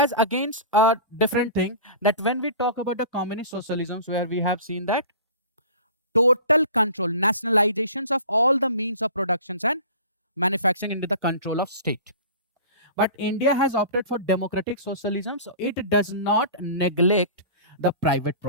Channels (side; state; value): both; inverted; correlation -0.39